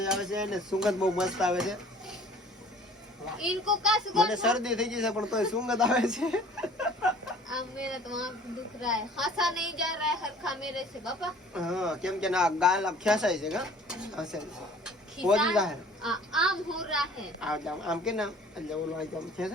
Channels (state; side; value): normal; both; correlation 0.50